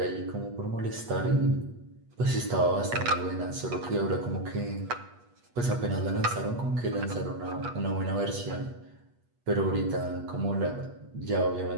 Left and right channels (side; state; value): left; late; 8.3 ms